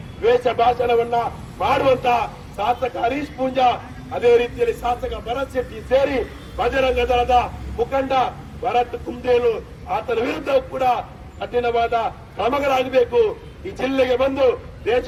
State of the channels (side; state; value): both; identical; correlation 1.00